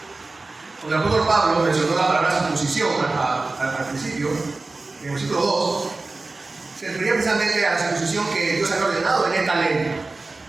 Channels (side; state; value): left; quieter; 3.4 dB